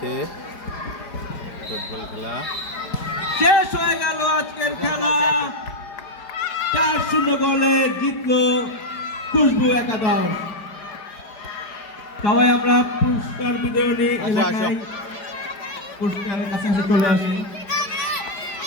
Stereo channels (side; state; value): right; late; 4.9 ms